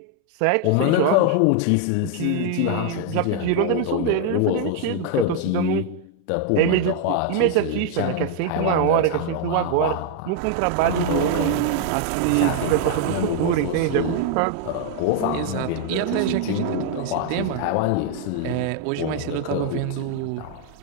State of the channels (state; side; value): different; both; correlation 0.00